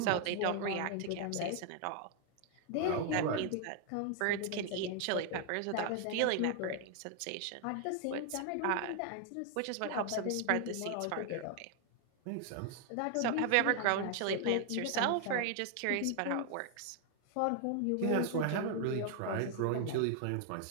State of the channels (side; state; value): both; different; correlation 0.00